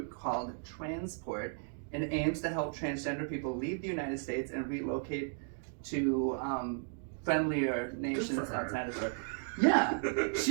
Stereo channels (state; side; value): silent; left; 55 dB below the other